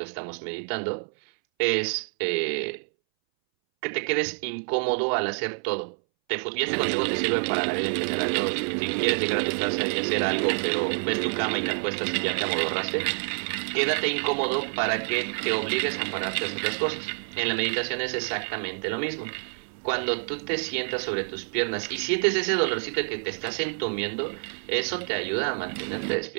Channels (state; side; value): silent; left; 60 dB below the other